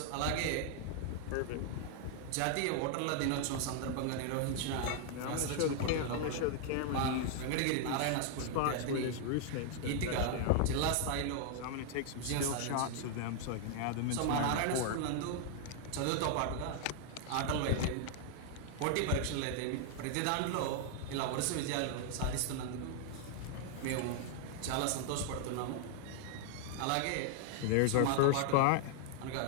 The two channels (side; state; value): both; different; correlation 0.00